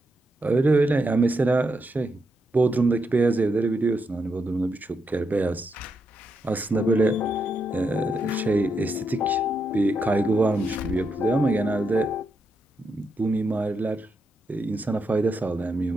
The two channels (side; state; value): both; normal; correlation 0.82